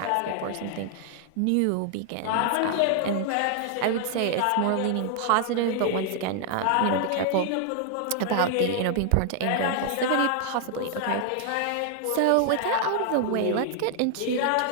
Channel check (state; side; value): different; both; correlation 0.00